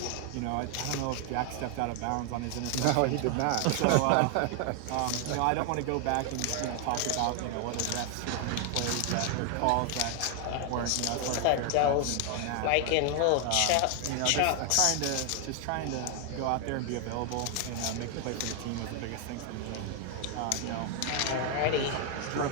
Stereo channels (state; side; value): different; both; correlation 0.00